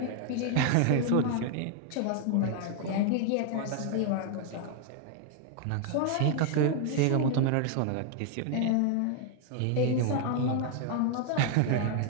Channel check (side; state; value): both; different; correlation 0.00